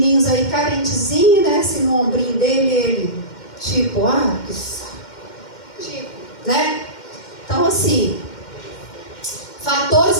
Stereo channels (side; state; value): right; late; 2.1 ms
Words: aí carentezinhos, né, assim no ombrinho dele, ele tipo, que saco, tipo, né? Então assim, fatores